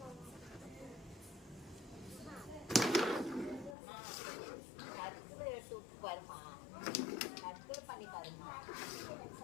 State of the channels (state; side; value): drops out; right; at 3.8 s